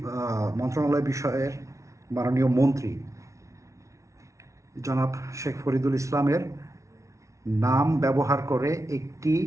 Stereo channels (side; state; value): left; late; 0.14 ms